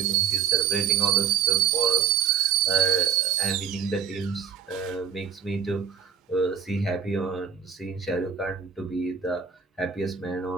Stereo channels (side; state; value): left; quieter; 7.5 dB